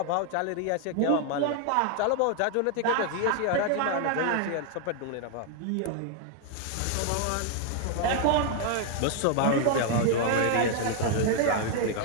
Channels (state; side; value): different; both; correlation 0.00